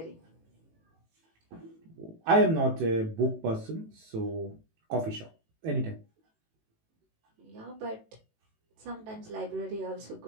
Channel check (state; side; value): late; left; 18 ms